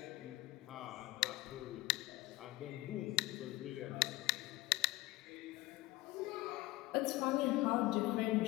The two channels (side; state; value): right; quieter; 19.3 dB